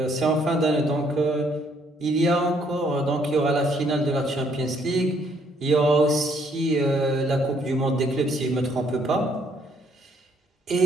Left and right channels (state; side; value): normal; both; correlation 0.67